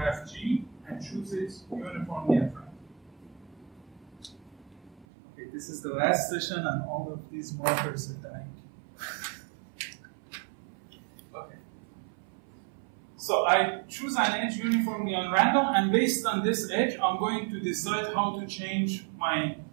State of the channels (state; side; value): drops out; left; at 5.1 s